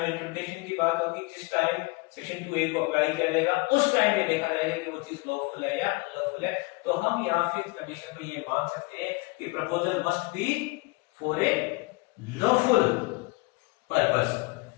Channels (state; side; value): quieter; right; 26.5 dB